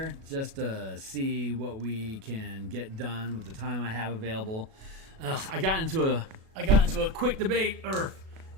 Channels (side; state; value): left; late; 37 ms